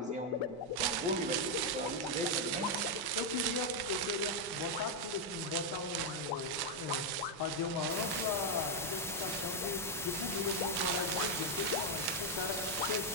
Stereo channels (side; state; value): both; normal; correlation 0.01